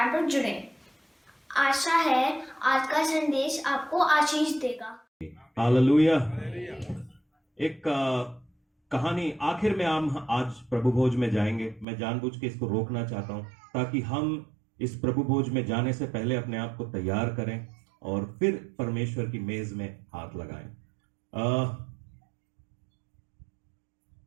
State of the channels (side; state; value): left; drops out; at 11.9 s